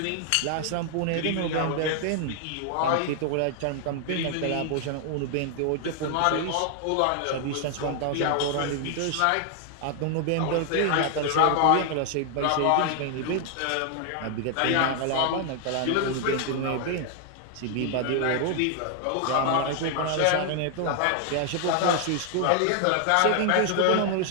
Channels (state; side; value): different; both; correlation 0.00